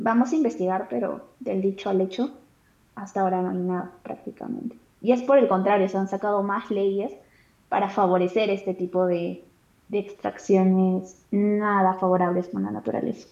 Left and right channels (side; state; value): both; identical; correlation 1.00